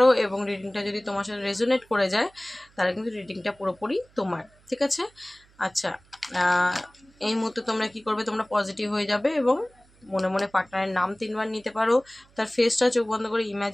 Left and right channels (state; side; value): noise; right; hum, 30 dB below the sound